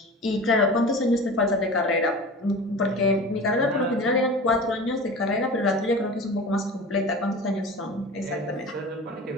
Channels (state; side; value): normal; both; correlation 0.35